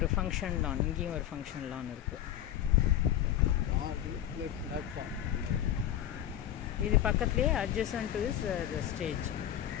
ஃபங்க்ஷன் லான், இங்கேயும் ஒரு ஃபங்க்ஷன் லான் இருக்குது. இது பக்கத்துலேயே adjacent to is the stage,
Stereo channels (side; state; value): right; quieter; 11.3 dB